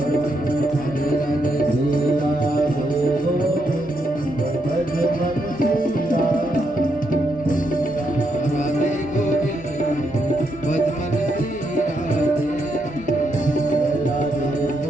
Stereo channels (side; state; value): both; normal; correlation 0.79